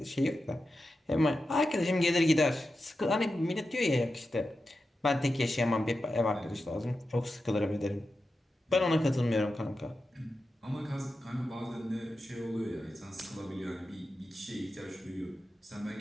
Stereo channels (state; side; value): normal; both; correlation 0.90